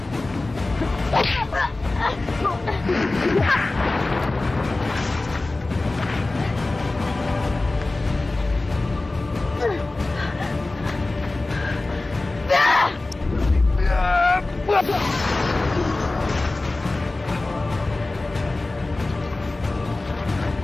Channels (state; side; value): quieter; right; 3.1 dB